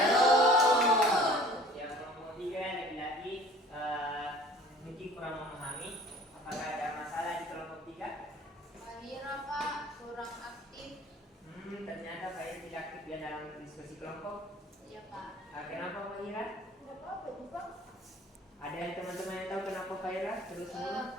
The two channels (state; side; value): normal; both; correlation 0.49